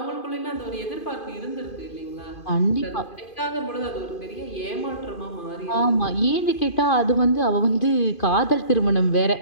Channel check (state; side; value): late; right; 2.5 ms